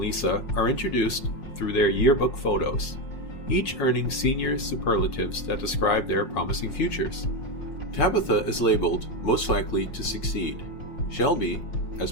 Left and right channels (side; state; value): right; late; 5.6 ms